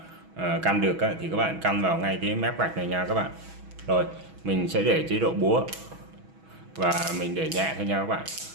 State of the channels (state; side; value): late; left; 6.2 ms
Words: căn được á, thì các bạn căn vào ngay cái mép gạch này nha các bạn. Rồi mình sẽ để chế độ búa và mình để nhẹ thôi nha các bạn,